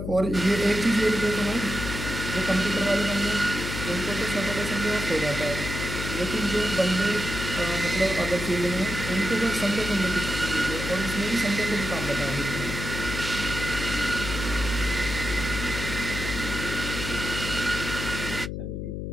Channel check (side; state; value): left; noise; hum, 5 dB below the sound